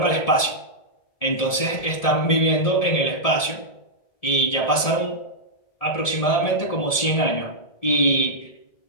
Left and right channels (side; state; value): right; late; 1.7 ms